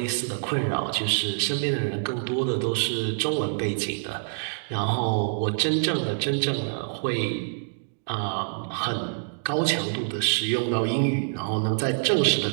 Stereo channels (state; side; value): silent; left; digital silence